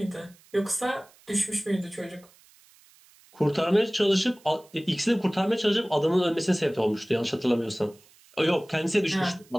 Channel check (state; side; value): noise; right; hiss, 28 dB below the sound